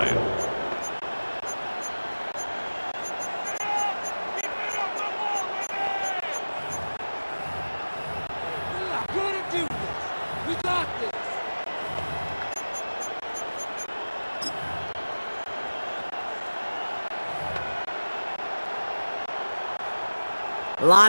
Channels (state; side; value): inverted; both; correlation -1.00